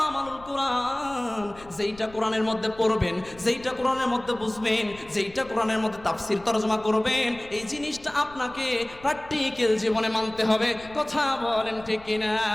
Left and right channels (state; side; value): noise; left; rumble, 21 dB below the sound